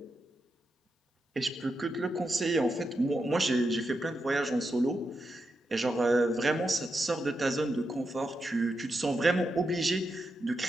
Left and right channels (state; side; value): normal; both; correlation 0.86